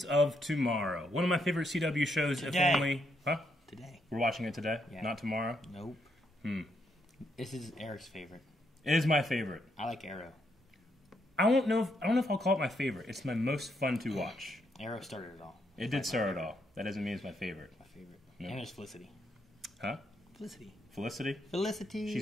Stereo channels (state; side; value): normal; both; correlation 0.77